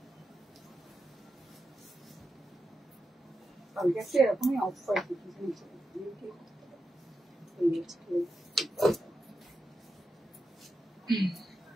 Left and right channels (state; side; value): normal; both; correlation 0.89